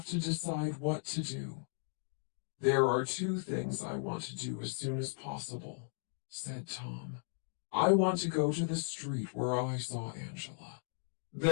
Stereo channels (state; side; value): silent; right; digital silence